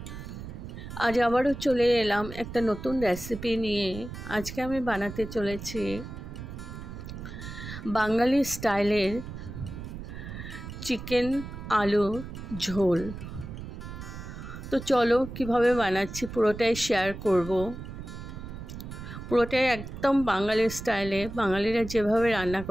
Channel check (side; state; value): right; noise; rumble, 10 dB below the sound